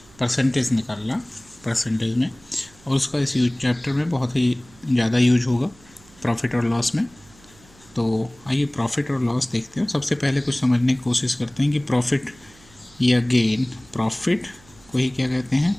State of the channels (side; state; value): right; noise; hum, 26 dB below the sound